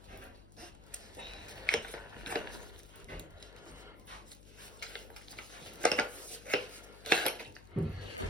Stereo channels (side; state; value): left; noise; hum, 17 dB below the sound